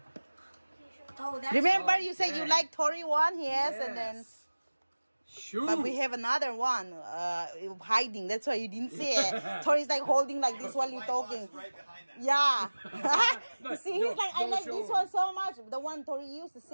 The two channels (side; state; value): both; inverted; correlation -1.00